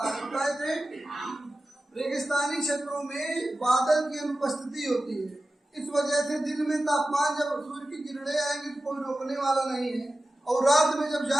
है। बताए थे रेगिस्तानी क्षेत्रों में बादल की अनुपस्थिति होती है, इस वजह से दिन में तापमान जब सूर्य की किरणें आएंगी तो कोई रोकने वाला नहीं है, और रात में जब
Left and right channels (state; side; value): normal; both; correlation 0.95